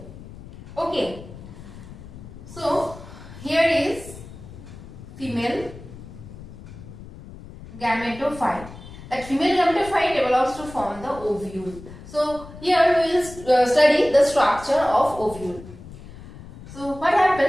Okay. So here is female gametophyte. That female gametophyte develops to form the ovule. So here we will study the structure of ovule. So what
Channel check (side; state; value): left; noise; rumble, 16 dB below the sound